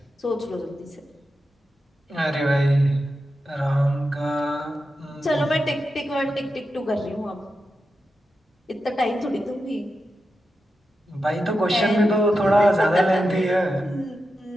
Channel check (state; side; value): normal; both; correlation 0.89